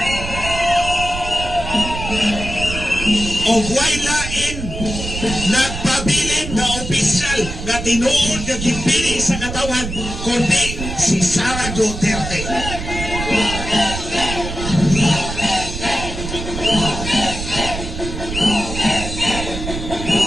O huway lain, nagpabilin na opisyal na tinuod na gipili sa katawan, kundi si Sara Duterte.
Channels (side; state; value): right; noise; rumble, 7 dB below the sound